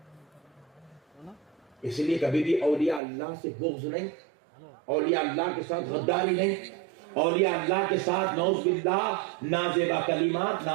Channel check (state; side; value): drops out; left; at 3.0 s